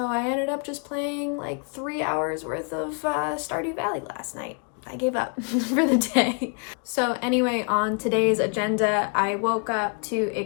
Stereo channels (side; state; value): right; quieter; 38.9 dB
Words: I ended up just playing like 3 hours worth of Stardew Valley last night. I gave up for the day. So anyway, on today's agenda, I woke up to a